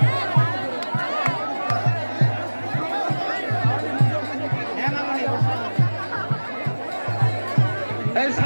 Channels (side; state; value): both; inverted; correlation -1.00